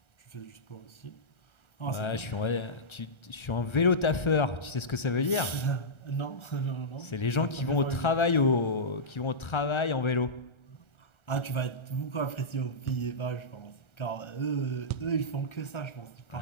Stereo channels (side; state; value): right; late; 1.3 ms